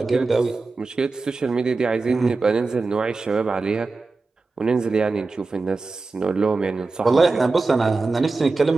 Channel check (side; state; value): left; quieter; 3.8 dB